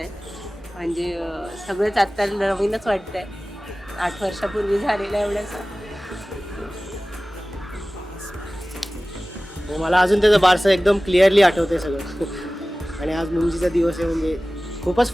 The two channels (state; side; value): normal; both; correlation 0.97